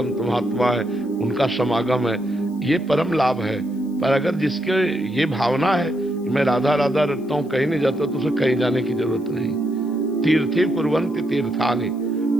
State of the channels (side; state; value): left; noise; hiss, 29 dB below the sound